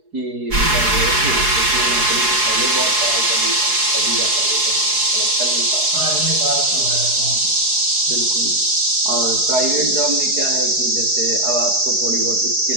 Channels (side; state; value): left; late; 4.8 ms